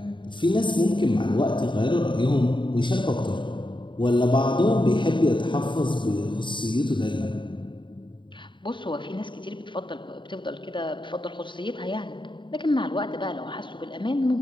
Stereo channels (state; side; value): late; right; 0.23 ms